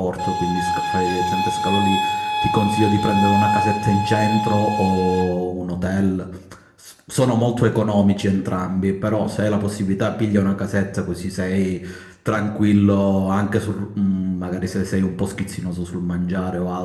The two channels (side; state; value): both; identical; correlation 1.00